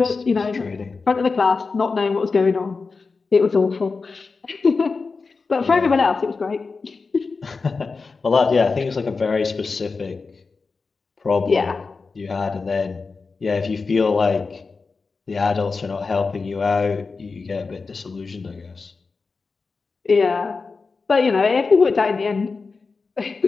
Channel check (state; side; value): quieter; right; 4.4 dB